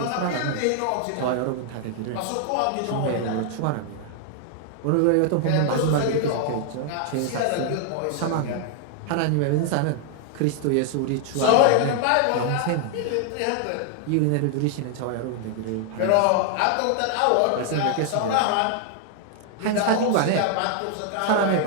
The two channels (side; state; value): both; different; correlation 0.00